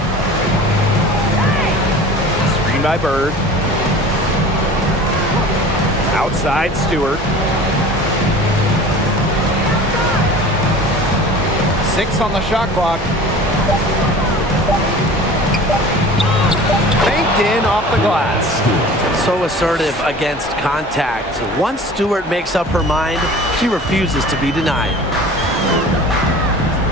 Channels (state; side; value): normal; both; correlation 0.41